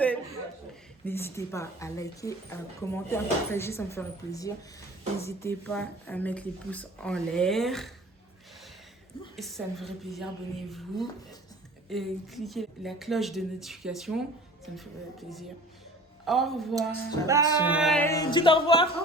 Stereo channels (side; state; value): both; normal; correlation 0.44